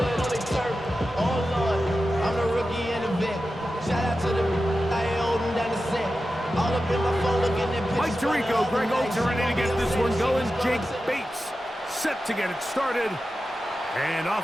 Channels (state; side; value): normal; both; correlation 0.92